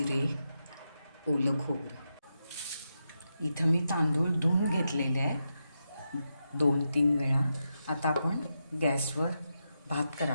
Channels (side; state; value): both; inverted; correlation -0.87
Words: ओलं खोबरं। इथं मी तांदूळ धुवून घेतलेले आहे 2-3 वेळा। आता आपण गॅसवर भात